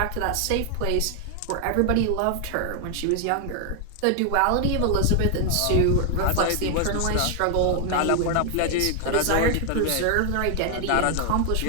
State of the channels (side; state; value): both; different; correlation 0.00